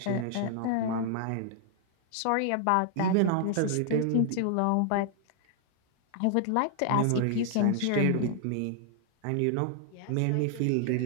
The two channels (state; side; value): different; both; correlation 0.00